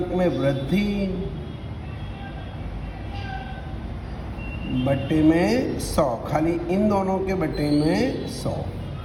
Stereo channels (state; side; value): identical; both; correlation 1.00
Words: में वृद्धि बट्टे में 100, खाली इन दोनों के बट्टे में 100।